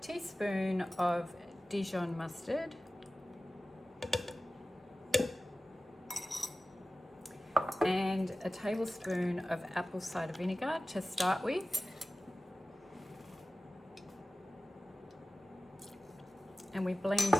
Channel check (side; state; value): both; normal; correlation 0.96